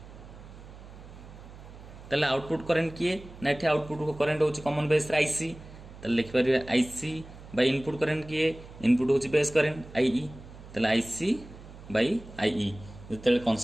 ताले आउटपुट करंट किए ना एठी आउटपुट करंट होची कॉमन बेस आईसी ताले लिख परिबे आईसी बाई इनपुट करंट किए इनपुट होची बेस करंट आईई ताले आईसी बाई आईई जते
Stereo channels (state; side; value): noise; right; hum, 17 dB below the sound